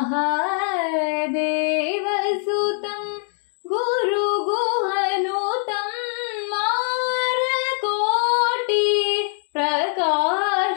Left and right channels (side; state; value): right; silent; digital silence